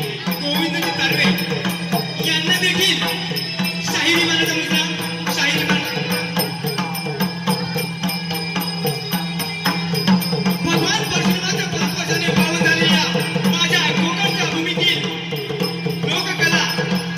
गोविंदजी तारवे यांना देखील शाहिरी मानाचा मुजरा, शाहिरी भगवान परशुरामाच्या 5 वर्षाने पावन झालेल्या माझ्या कोकणच्या भूमीतील लोककला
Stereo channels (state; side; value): identical; both; correlation 1.00